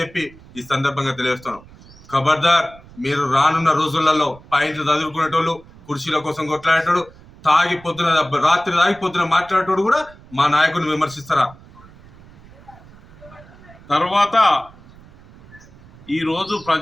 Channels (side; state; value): right; noise; rumble, 22 dB below the sound